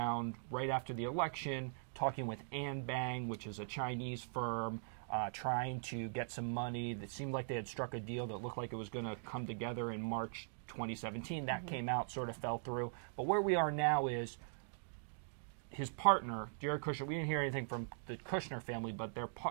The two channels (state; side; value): silent; left; digital silence